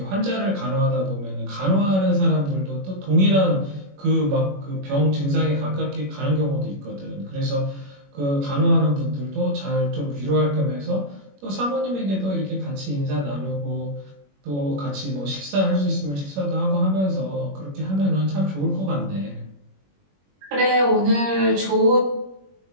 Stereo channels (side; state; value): left; late; 21 ms